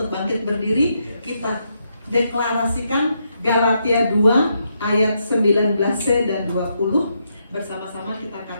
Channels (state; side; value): inverted; both; correlation -0.79